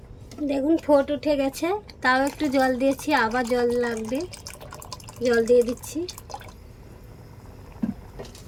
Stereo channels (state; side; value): identical; both; correlation 1.00